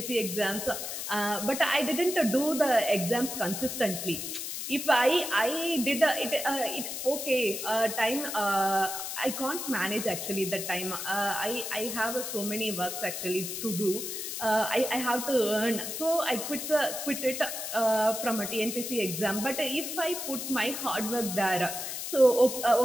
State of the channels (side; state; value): left; noise; hiss, 5 dB below the sound